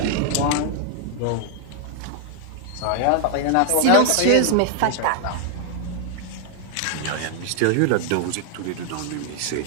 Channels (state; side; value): different; both; correlation 0.00